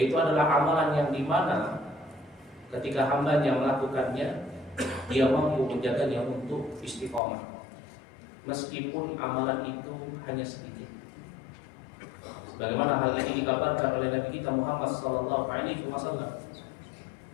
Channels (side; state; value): right; drops out; at 7.2 s